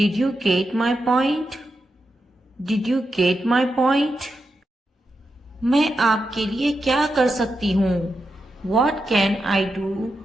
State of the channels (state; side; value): normal; both; correlation 0.87